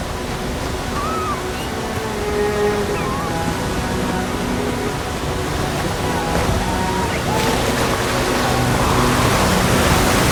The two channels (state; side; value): identical; both; correlation 1.00